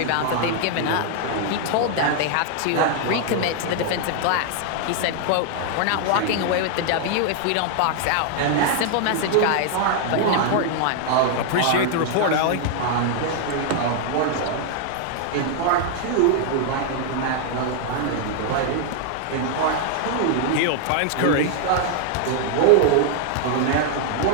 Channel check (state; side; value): different; both; correlation 0.00